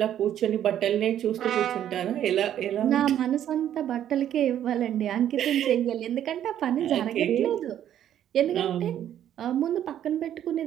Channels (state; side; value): quieter; left; 10.8 dB